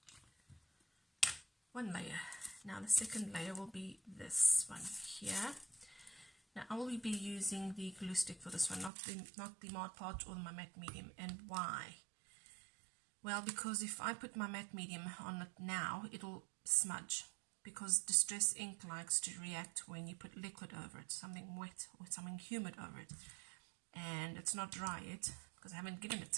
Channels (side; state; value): left; drops out; at 8.9 s